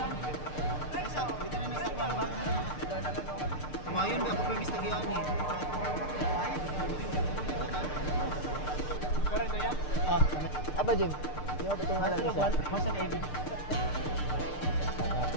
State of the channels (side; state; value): right; late; 6.7 ms